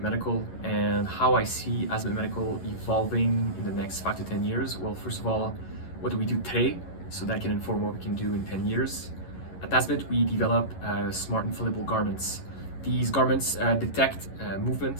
Medical, and how I see Asmet Medical evolving in the next 5 to 10 years. Well, first of all, what do we do today so that can inform what we can do in 10 years? At Asmet, we develop smart inflatable garments. These garments detect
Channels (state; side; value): late; right; 11 ms